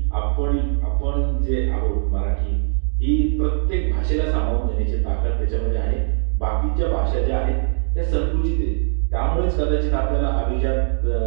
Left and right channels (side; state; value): left; silent; digital silence